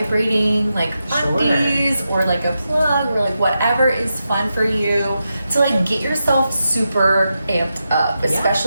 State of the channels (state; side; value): inverted; both; correlation -0.88